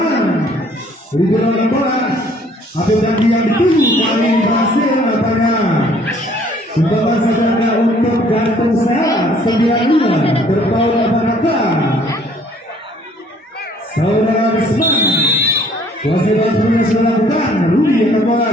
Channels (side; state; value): both; normal; correlation 0.59